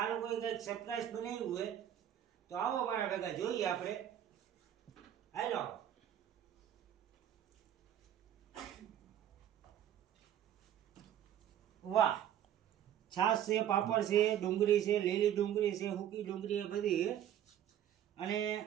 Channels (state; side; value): quieter; left; 10.7 dB